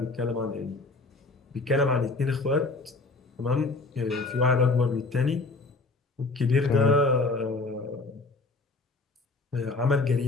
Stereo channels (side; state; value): right; quieter; 3.5 dB